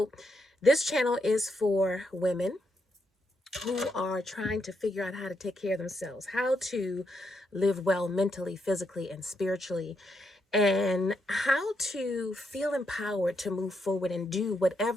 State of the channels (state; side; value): normal; both; correlation 0.80